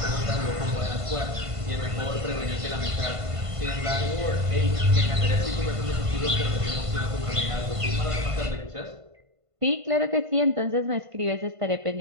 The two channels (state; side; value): late; left; 1.5 ms